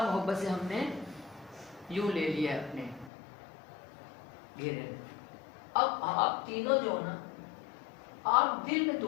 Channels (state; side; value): drops out; right; at 3.1 s